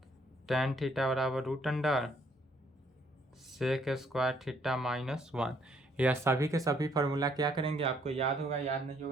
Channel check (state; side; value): normal; both; correlation 0.67